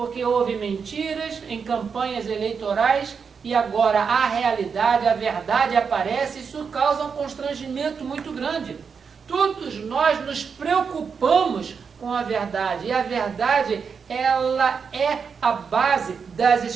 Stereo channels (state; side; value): quieter; left; 6.0 dB